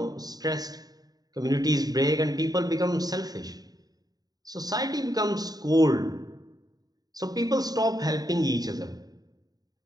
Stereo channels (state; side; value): late; left; 0.18 ms